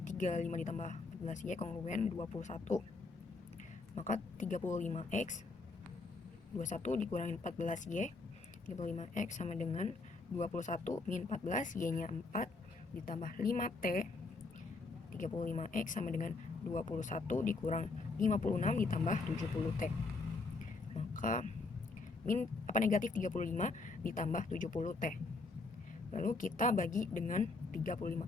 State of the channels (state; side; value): quieter; right; 3.7 dB